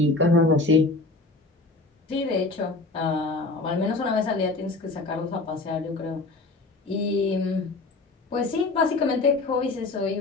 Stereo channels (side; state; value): right; quieter; 3.4 dB